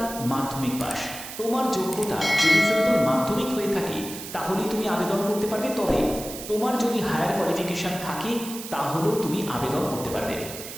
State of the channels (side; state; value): right; noise; hiss, 11 dB below the sound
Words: মাধ্যমিক পাস। তোমার যোগ্যতা যদি সিম্পল মাধ্যমিক হয়ে থাকে তাহলেই তুমি আবেদন করতে পারবে, তবে তোমার যদি হায়ার কোয়ালিফিকেশন থাকে তাহলেও তুমি আবেদন করতে পারবে।